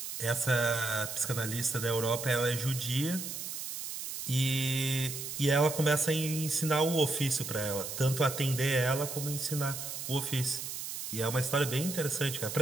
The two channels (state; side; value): noise; right; hiss, 6 dB below the sound